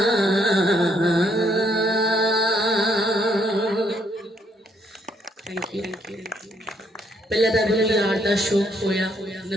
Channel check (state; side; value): normal; both; correlation 0.71